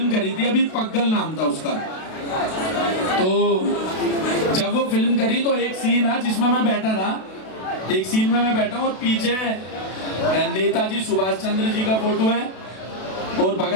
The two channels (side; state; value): right; late; 32 ms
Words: करी थी अभी, पग्गल नाम था उसका। तो जब वो फिल्म करी तो एक सीन है जिसमें मैं बैठा था, एक सीन में मैं बैठा हूँ और पीछे नेताजी सुभाष चंद्र जी का फोटो है और